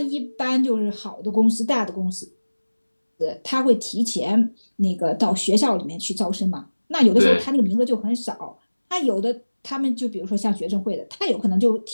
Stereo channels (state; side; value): inverted; both; correlation -1.00